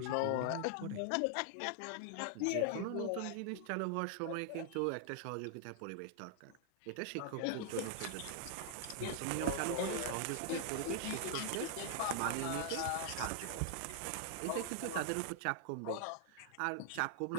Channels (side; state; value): both; different; correlation -0.01